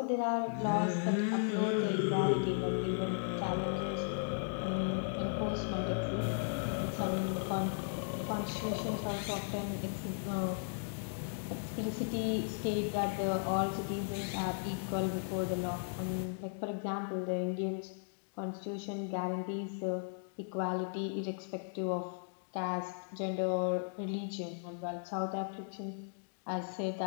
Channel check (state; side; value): silent; right; digital silence